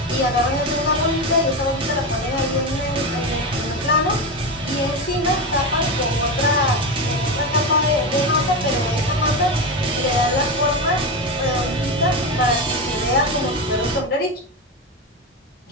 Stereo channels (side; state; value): both; normal; correlation 0.17